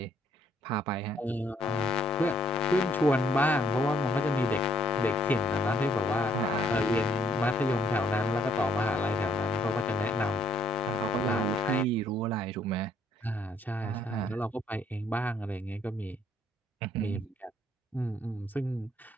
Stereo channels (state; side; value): normal; both; correlation 0.65